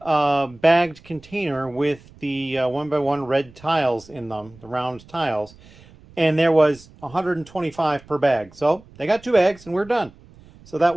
bagged container with the 1x1 red tiles in them, the round tiles, and there was 125 per bag. So they got 2 bags and we're done. So that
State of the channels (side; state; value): right; noise; rumble, 24 dB below the sound